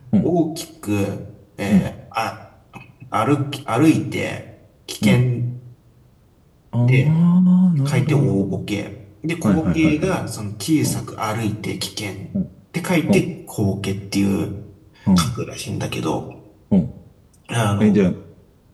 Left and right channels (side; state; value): both; identical; correlation 1.00